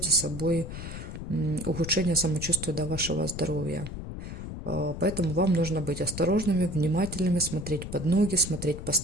за собой ухудшение самочувствия до вашего здоровья. Поэтому вам нужно быть осторожными, внимательными, смотреть под ноги, смотреть по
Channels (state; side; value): noise; left; rumble, 8 dB below the sound